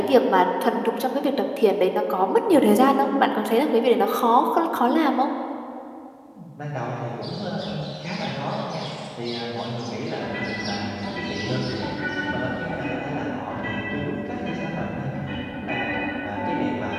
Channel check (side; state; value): both; identical; correlation 1.00